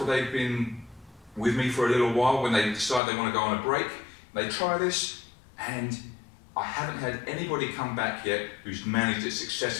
they've been with me for a little while, when they decide they want to go on a break. They try this, and I haven't had anybody come back yet who's managed it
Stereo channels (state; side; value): drops out; right; at 3.0 s